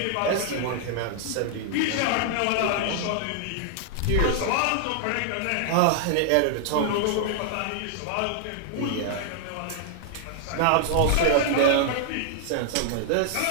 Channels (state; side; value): different; both; correlation 0.00